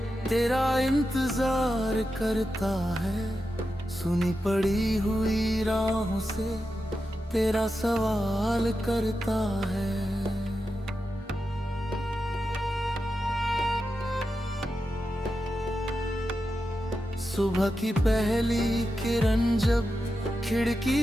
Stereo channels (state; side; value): normal; both; correlation 0.89